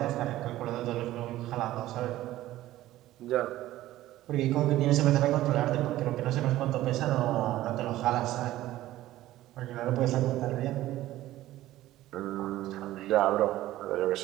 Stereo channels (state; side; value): quieter; left; 15.2 dB